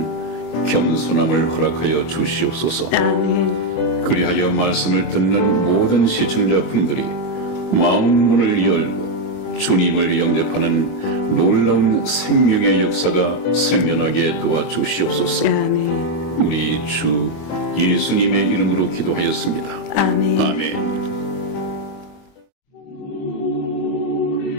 겸손함을 허락하여 주시옵소서. 아멘. 그리하여 말씀을 듣는 모든 시청자분들이 마음 문을 열고 주님을 영접하는 놀라운 생명의 역사가 생겨나게 도와주시옵소서. 아멘. 우리 주 예수님의 이름으로 기도하였습니다. 아멘. 아멘.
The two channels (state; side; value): late; right; 25 ms